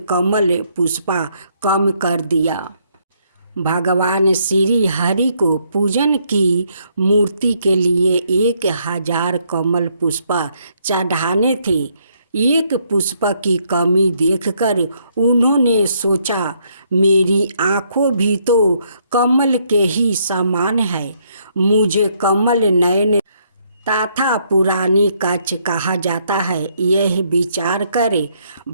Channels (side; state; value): both; inverted; correlation -0.71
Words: कमल पुष्पा कम कर दिया। भगवान श्री हरि को पूजन की मूर्ति के लिए 1000 कमल पुष्पा चढ़ाने थे। एक पुष्प की कमी देखकर उन्होंने सोचा, मेरी आँखों भी तो कमल के ही समान है, मुझे कमल नयन तथा पुरानी कच्छ कहा जाता है। यह विचार कर